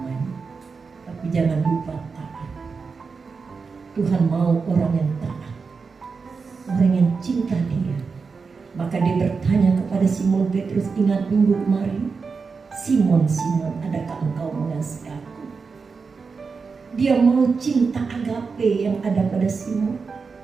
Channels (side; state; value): left; quieter; 4.9 dB